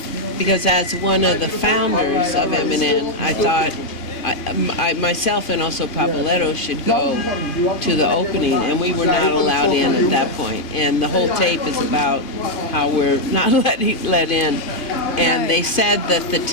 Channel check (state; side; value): late; right; 2.5 ms